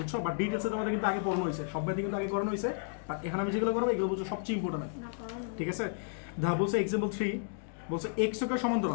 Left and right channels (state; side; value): silent; right; digital silence